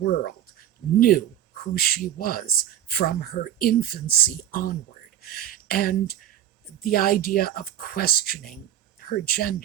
knew who she was from her infancy onward. And the idea of questioning her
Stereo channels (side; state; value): left; quieter; 11.2 dB